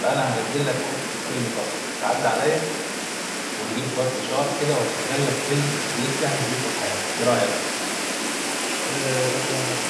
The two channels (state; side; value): identical; both; correlation 1.00